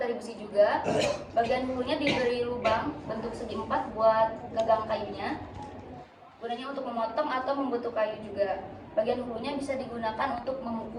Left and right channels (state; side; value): identical; both; correlation 1.00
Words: besi juga. Bagian hulunya diberi lubang bentuk segi 4 buat gagang kayunya. Gunanya untuk memotong atau membentuk kayu juga. Bagian hulunya bisa digunakan untuk